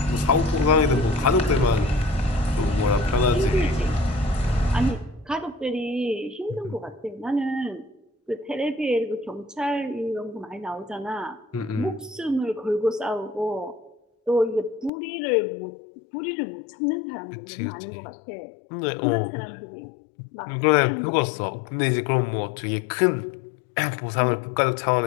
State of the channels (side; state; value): right; drops out; at 14.9 s